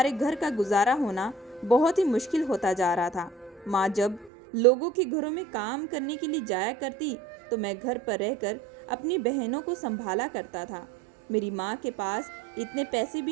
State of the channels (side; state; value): left; drops out; at 4.3 s